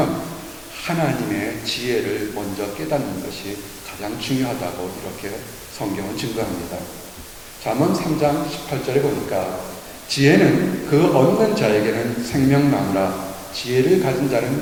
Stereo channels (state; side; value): identical; both; correlation 1.00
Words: 하나님의 지혜를 먼저 깨닫는 것이 가장 중요하다고 이렇게 성경은 증거합니다. 잠언 3장 18절에 보니까 지혜는 그 얻는 자에게는 생명나무라 지혜를 가진